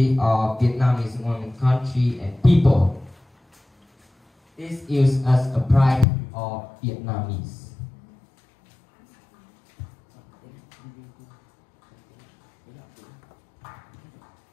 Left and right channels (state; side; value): drops out; right; at 6.1 s